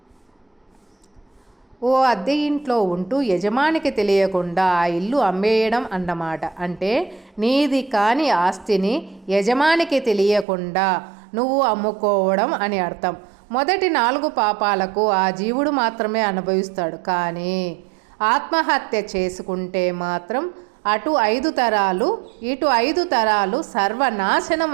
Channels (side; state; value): left; drops out; at 10.5 s